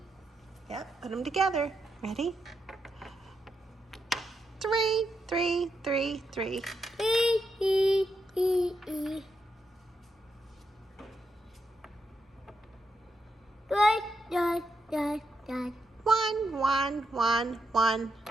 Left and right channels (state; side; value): normal; both; correlation 0.83